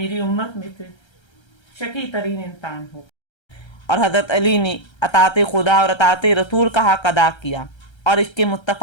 उम्मत में से शकी तरीन इंसान होगा। और हजरत अली ने अताते खुदा और अताते रसूल का हक अदा किया, और इसके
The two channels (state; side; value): late; right; 1.3 ms